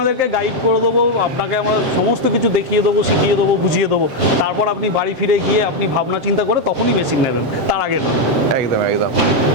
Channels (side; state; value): left; late; 7.7 ms